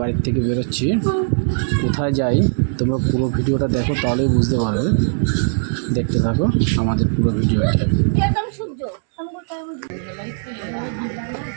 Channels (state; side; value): silent; left; digital silence